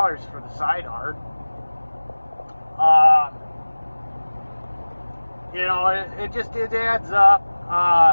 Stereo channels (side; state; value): both; inverted; correlation -1.00